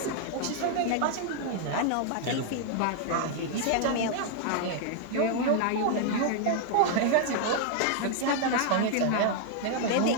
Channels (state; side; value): different; both; correlation 0.00